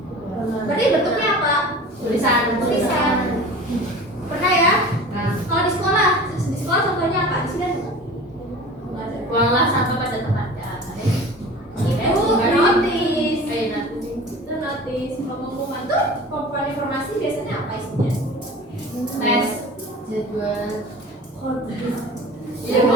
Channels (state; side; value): normal; both; correlation 0.39